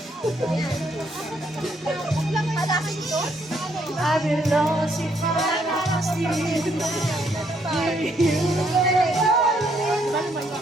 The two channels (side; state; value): both; normal; correlation 0.71